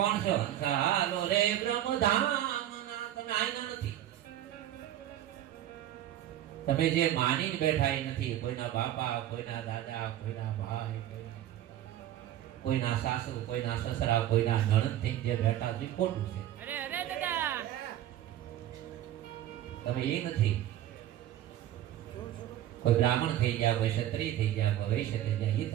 છો? હાલો રે બ્રહ્મધામ. તમે આયના નથી. તમે જે માની બેઠા એ નથી. કોઈના બાપા, કોઈના દાદા, કોઈના ભાઈ, કોઈના સાસુ, કોઈના સસરા, કોઈના નણંદ થઈ જે બેઠા છે ખોટું છે. અરે અરે દાદા, તમે એ નથી. કોઈ બ્રાહ્મણ થઈ જાય, કોઈ ક્ષત્રિય થઈ જાય, કોઈ વૈશ્ય થઈ જાય, એ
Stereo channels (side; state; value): left; quieter; 12.4 dB